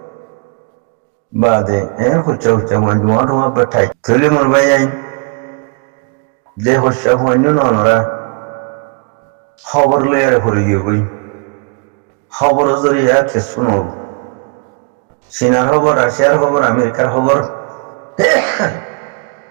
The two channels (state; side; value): quieter; left; 32.9 dB